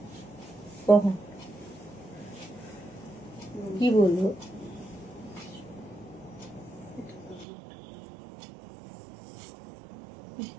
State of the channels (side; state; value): left; drops out; at 7.5 s